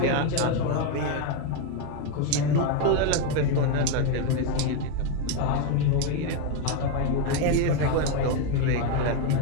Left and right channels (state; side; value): different; both; correlation 0.02